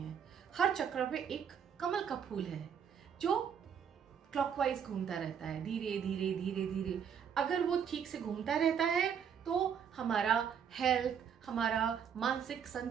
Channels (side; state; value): left; quieter; 7.8 dB